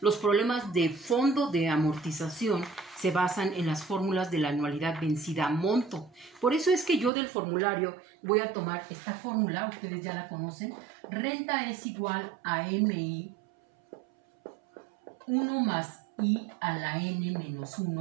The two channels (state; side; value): drops out; left; at 7.1 s